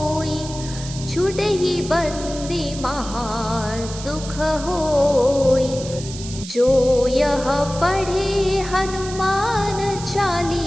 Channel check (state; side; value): noise; right; hiss, 12 dB below the sound